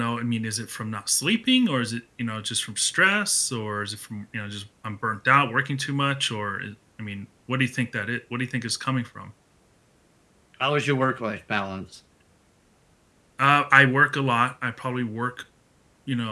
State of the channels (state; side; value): identical; both; correlation 1.00